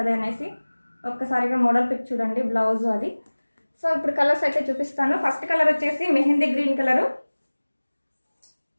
అనేసి ఒక్కసారిగా మోడల్ పిక్ చూడండి, బ్లౌజ్ అది. సో ఇప్పుడు కలర్స్ అయితే చూపిస్తాను. ఫస్ట్ కలర్ వచ్చేసి mehndi green colour.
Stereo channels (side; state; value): both; inverted; correlation -1.00